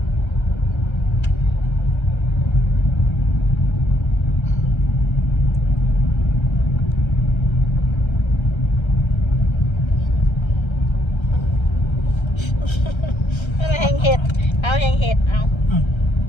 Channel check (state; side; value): late; right; 1.3 ms